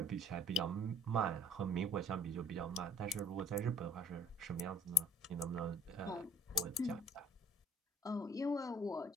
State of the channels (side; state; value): both; normal; correlation 0.53